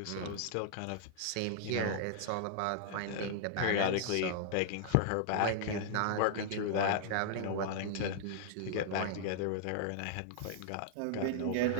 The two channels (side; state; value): both; different; correlation -0.01